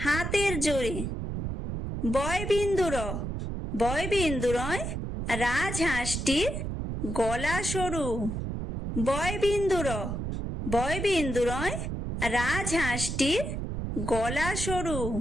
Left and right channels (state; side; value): noise; right; rumble, 4 dB below the sound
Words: জোরে। বয়বিন্দুর বয়বিন্দুরয় রাজহাঁসটির গলা সরু। বয়বিন্দুর বয়বিন্দুরয় রাজহাঁসটির গলা সরু।